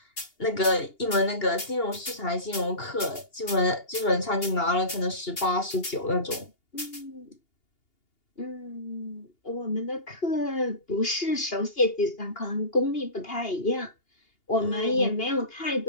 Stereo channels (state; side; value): late; right; 2.8 ms